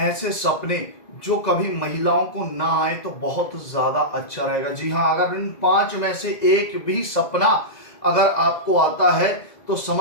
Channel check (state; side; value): late; right; 1.9 ms